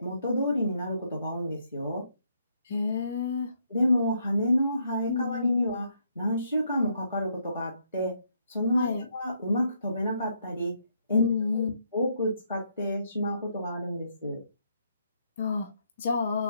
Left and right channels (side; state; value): both; inverted; correlation -0.74